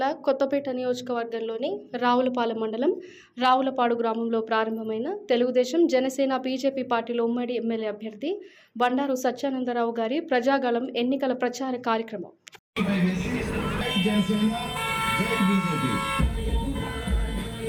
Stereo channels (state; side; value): identical; both; correlation 1.00